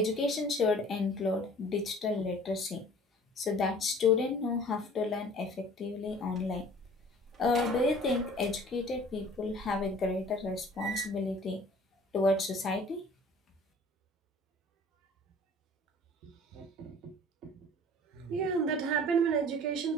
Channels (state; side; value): normal; both; correlation 0.49